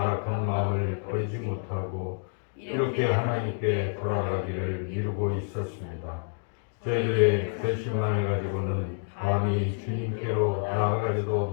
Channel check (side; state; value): right; silent; digital silence